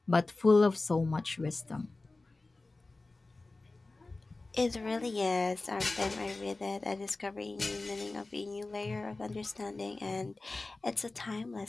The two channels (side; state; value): right; quieter; 3.3 dB